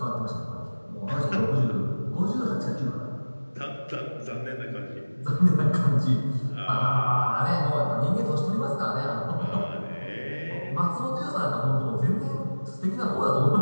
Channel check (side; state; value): both; inverted; correlation -1.00